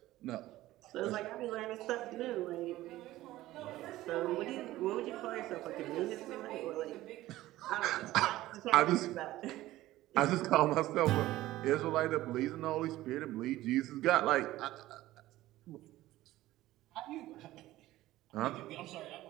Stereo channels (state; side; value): quieter; left; 16.1 dB